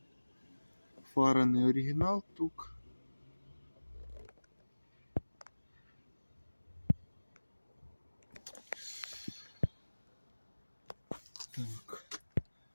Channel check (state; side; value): inverted; both; correlation -1.00